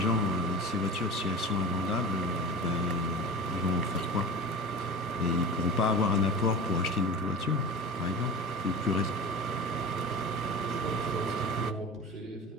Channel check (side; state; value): both; normal; correlation 0.33